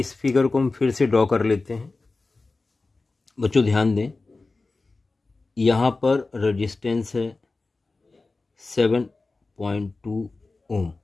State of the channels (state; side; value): quieter; right; 3.6 dB